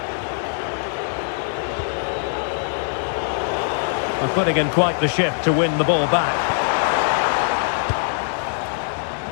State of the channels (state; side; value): silent; right; digital silence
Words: They're putting in quite the shift to win the ball back.